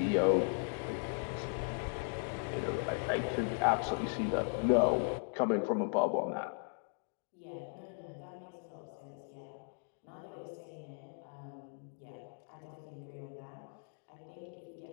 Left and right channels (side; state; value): right; silent; 53 dB below the other